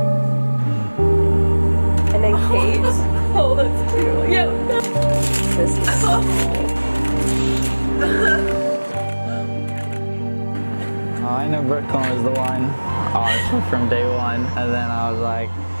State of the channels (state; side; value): inverted; both; correlation -1.00